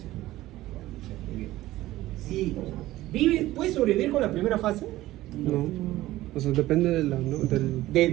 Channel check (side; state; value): left; quieter; 16.2 dB